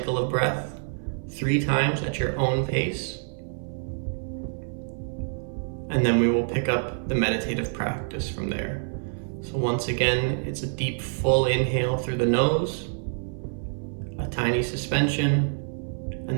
of breath 3 times at your own pace, and then we will pick up the meditative practice from there. So once again, it's a deep, full inhale through the nose, a tiny suspension,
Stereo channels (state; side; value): silent; left; 58 dB below the other